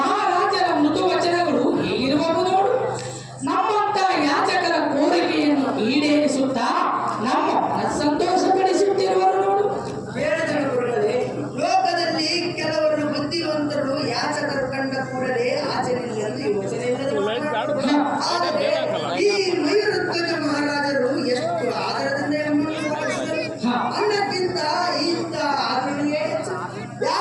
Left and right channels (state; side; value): identical; both; correlation 1.00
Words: ಮೃದು ವಚನಗಳು ಹೇಗಿರುವವು ನೋಡು. ನಮ್ಮಂತ ಯಾಚಕರ ಕೋರಿಕೆಯನ್ನು ಈಡೇರಿಸುತ್ತಾ ನಮ್ಮ ಸಂತೋಷಪಡಿಸುತ್ತಿರುವರು ನೋಡು. ಹೇಳಿದರು ಗುರುಗಳೇ, ಲೋಕದಲ್ಲಿ ಕೆಲವರು ಬುದ್ಧಿವಂತರು ಯಾಚಕರು ಕಂಡ ಕೂಡಲೇ ಆಚರಣೆಯಲ್ಲಿ ಯೋಚನೆ ಆದರೆ ಈ ಮಯೂರಧ್ವಜ ಮಹಾರಾಜರು ಎಷ್ಟು ಆದರದಿಂದ ಅನ್ನಕ್ಕಿಂತ ಇಂಥ ಆದರಣೆಯೇ ಹೆಚ್ಚು.